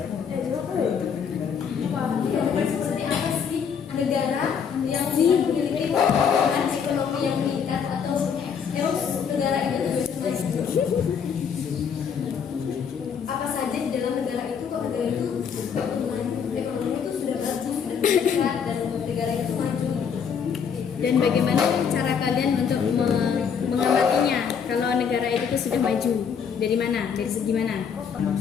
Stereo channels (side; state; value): right; quieter; 7.0 dB